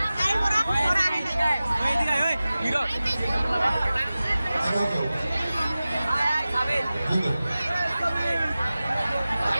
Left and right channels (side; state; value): both; inverted; correlation -0.96